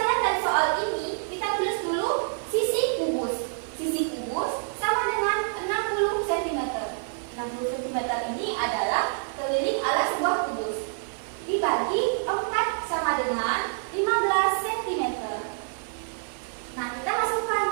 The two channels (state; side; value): silent; left; 55 dB below the other